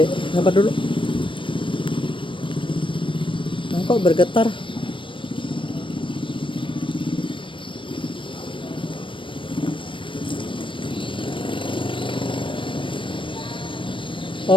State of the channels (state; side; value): late; right; 0.25 ms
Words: Sabar dulu. Nah, kok bergetar?